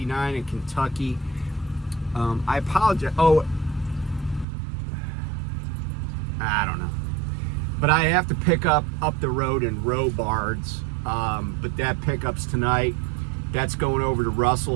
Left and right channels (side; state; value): left; drops out; at 4.5 s